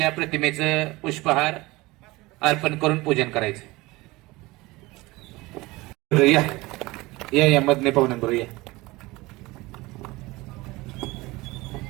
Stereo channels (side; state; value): left; quieter; 21.3 dB